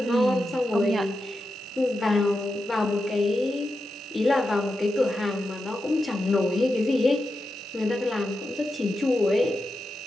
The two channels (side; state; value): both; normal; correlation 0.88